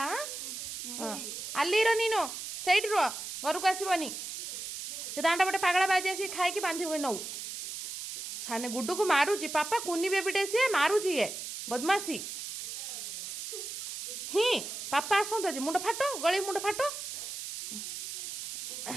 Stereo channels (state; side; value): noise; right; hiss, 6 dB below the sound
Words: ಅಲ್ಲಿರೋ ನೀನು ସେଇଠି ରୁହ ଘରକୁ ଆସିବନି ସେ ଦାଣ୍ଡ ପଟେ ପାଗଳା ବାଜି ଆସିକି ଖାଇକି ବାନ୍ଧିବୁ ନଉ ସାନେ ଗୁଡୁକୁ ମାରୁଛି ପାପା କୁନି ବେବିଟେ ସିଏ ମାରୁଛି ଇଏ ବଦମାସି ହିଁ ପାପା ଆସନ୍ତୁ ଆଜି ମୁଣ୍ଡ ଫାଟ ଗଳି ମୁଣ୍ଡ ଫାଟ